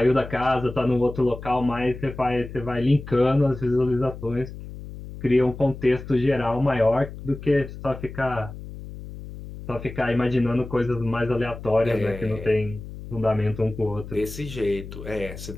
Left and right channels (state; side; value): noise; left; hum, 12 dB below the sound